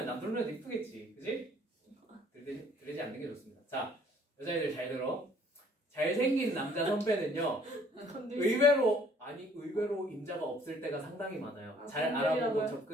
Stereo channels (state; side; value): normal; both; correlation 0.59